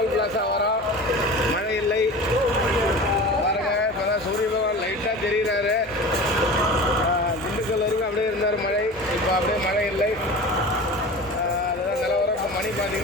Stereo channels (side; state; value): left; noise; hum, 23 dB below the sound